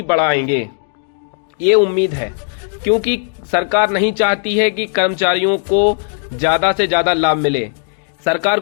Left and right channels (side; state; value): right; silent; digital silence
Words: बढ़ाएंगे। ये उम्मीद है, क्योंकि सरकार नहीं चाहती है कि कर्मचारियों को ज्यादा से ज्यादा लाभ मिले। सरकार